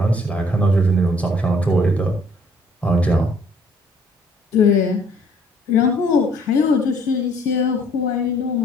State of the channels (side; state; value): both; normal; correlation 0.60